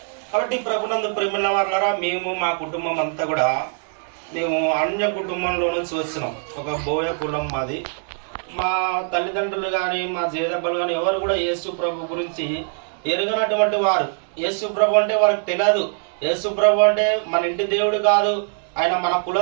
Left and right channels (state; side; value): silent; left; 61 dB below the other